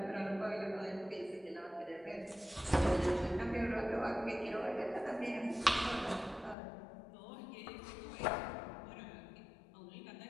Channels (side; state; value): right; drops out; at 6.6 s